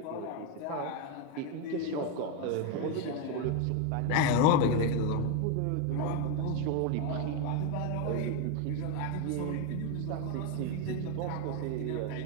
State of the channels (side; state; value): both; different; correlation 0.02